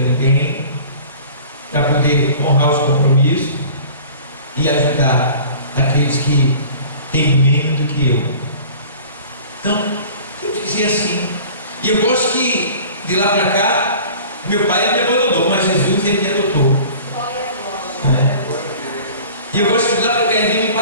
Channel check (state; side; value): inverted; both; correlation -0.44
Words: ninguém, para poder honrar os compromissos e ajudar aqueles que têm menos do que eu. Então, temos que ser assim. E eu gosto que de lá para cá, meu pai me abandonou, mas Jesus ele me adotou. E eu gosto que de lá para cá ele vem me